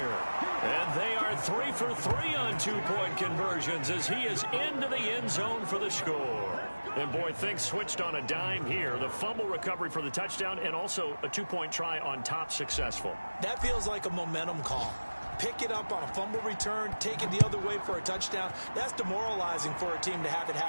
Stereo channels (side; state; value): both; inverted; correlation -1.00